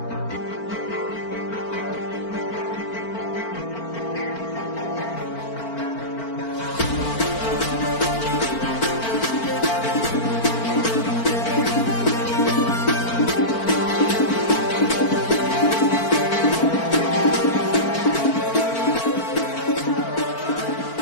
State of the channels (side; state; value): right; late; 4.4 ms